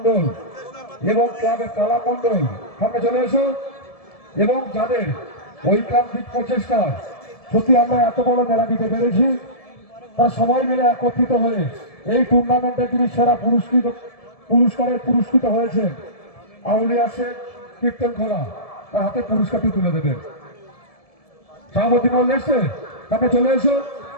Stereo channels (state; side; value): late; right; 1.7 ms